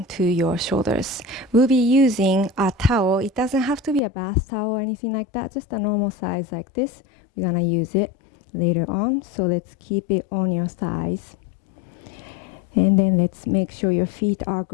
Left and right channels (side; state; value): right; drops out; at 4.0 s